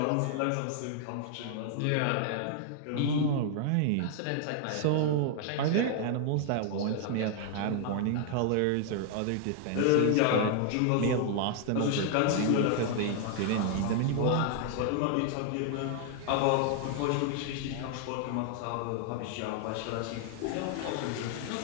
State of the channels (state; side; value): different; both; correlation 0.00